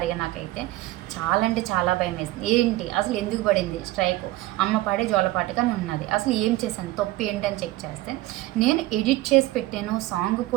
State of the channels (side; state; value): left; quieter; 17.4 dB